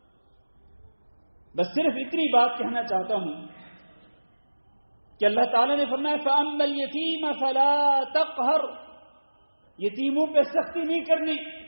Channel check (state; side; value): inverted; both; correlation -1.00